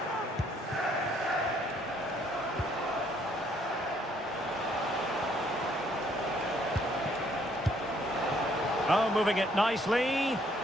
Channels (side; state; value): both; normal; correlation 0.66